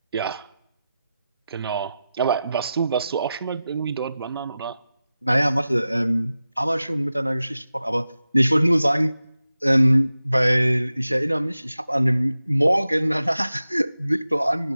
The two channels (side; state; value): both; inverted; correlation -0.93